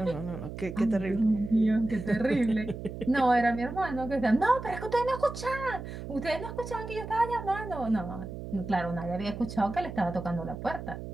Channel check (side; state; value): right; noise; hum, 9 dB below the sound